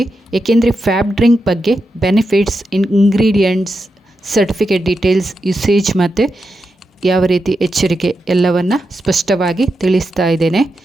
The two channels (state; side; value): normal; both; correlation 0.87